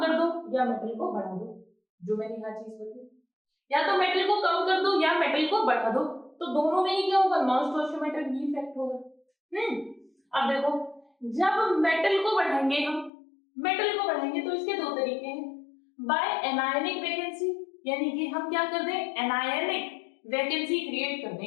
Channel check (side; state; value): right; drops out; at 13.1 s